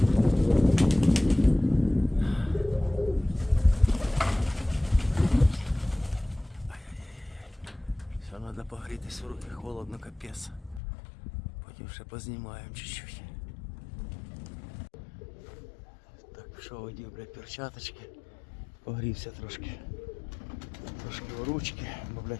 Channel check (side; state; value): right; drops out; at 10.8 s